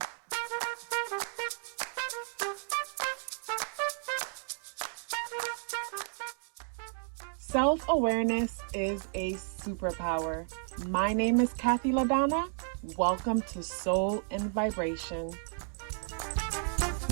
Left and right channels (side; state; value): left; silent; 56 dB below the other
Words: Self-awareness is a superpower. My name is KathyLaDonna. Welcome to Soul and Vibration.